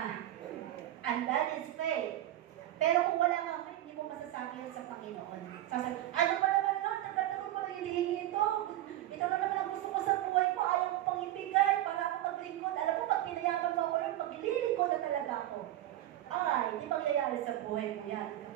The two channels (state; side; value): quieter; left; 13.8 dB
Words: And that is faith. Pero kung wala kang faith, hindi mo masasabi yun sa Panginoon. Sasabi, ano ba naman, Lord? Nagkataon ko na hinihingi ito. Ito na naman ang gusto ko sa buhay ko. Ayaw ko pang ibigay para ako maglingkod. Alam mo, pag pinayaman mo ako, Lord, maglilingkod na talaga ako. Ay, hindi mangyayari sa buhay mo yan,